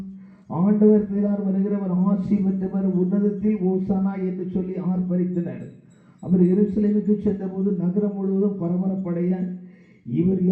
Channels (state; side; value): identical; both; correlation 1.00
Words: ஆண்டவர் பேரால் வருகிறவர் ஆசி பெற்றவர், உன்னதத்தில் ஓசனா என்று சொல்லி ஆர்ப்பரித்தனர். அவர் எருசலேமுக்கு சென்றபோது நகரம் முழுவதும் பரபரப்படைய இவர்